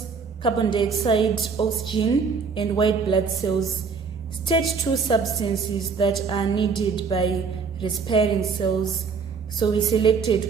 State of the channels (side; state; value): left; quieter; 5.4 dB